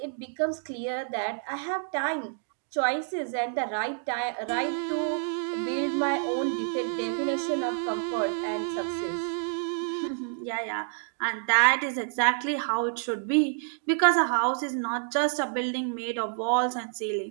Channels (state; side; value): silent; left; digital silence